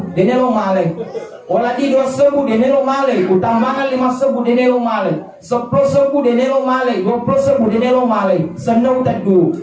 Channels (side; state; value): both; identical; correlation 1.00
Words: dina lo male waladi 2 sebu denelo male utambangan 5 sebu denelo male 10 sebu denelo male 20 sebu denelo male senau tadu